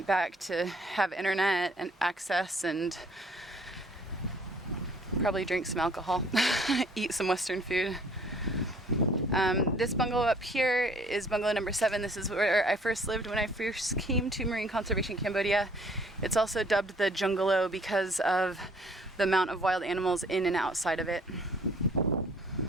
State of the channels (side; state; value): both; normal; correlation 0.58